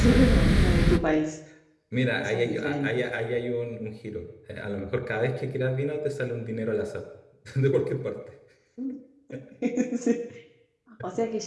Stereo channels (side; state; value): both; identical; correlation 1.00